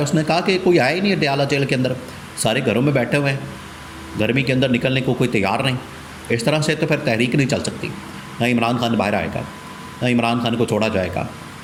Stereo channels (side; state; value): both; identical; correlation 1.00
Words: نے کہا کہ کوئی آیا ہی نہیں اڈیالہ جیل کے اندر, سارے گھروں میں بیٹھے ہوئے ہیں, گرمی کے اندر نکلنے کو کوئی تیار نہیں. اس طرح سے تو پھر تحریک نہیں چل سکتی. نہ عمران خان باہر آئے گا, نہ عمران خان کو چھوڑا جائے گا.